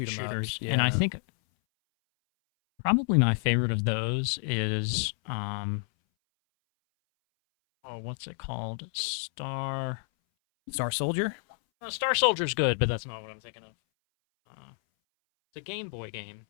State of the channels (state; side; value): silent; right; 58 dB below the other